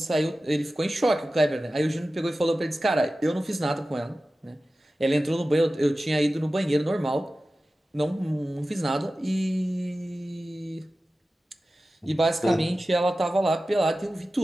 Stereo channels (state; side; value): normal; both; correlation 0.95